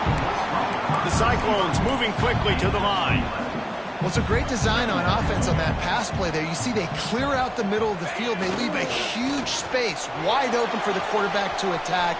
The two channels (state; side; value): identical; both; correlation 1.00